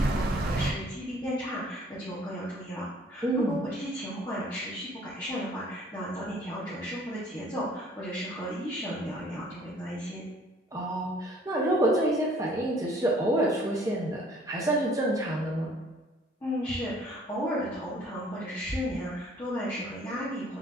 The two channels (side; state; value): both; normal; correlation 0.56